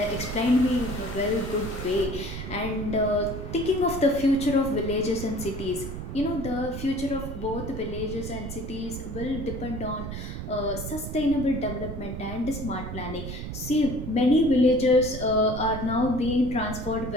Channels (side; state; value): right; noise; rumble, 7 dB below the sound